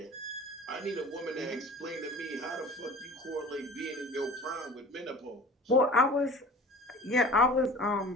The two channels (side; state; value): both; normal; correlation 0.41